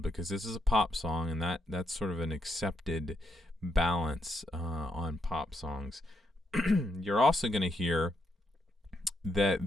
because this is a pop song, and that's sort of an accepted balance on pop songs. You're also going to hear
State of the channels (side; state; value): both; normal; correlation 0.78